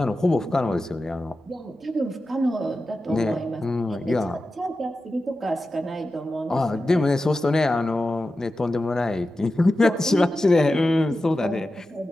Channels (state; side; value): normal; both; correlation 0.92